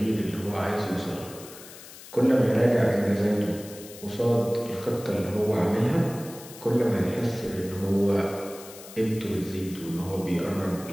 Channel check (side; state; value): left; noise; hiss, 17 dB below the sound